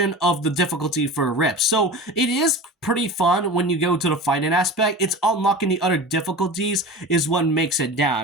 of the difficulty for RIP. So it is pretty fun when you go to the fighting aspect. It's unlocking the other difficulties is what makes it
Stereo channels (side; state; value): both; normal; correlation 0.33